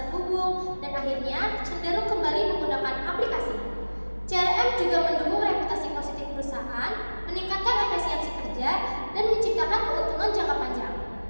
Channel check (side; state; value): both; inverted; correlation -1.00